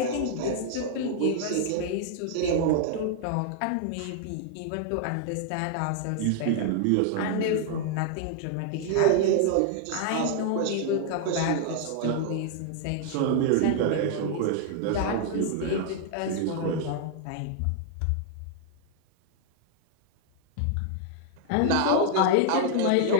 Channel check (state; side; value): different; both; correlation -0.01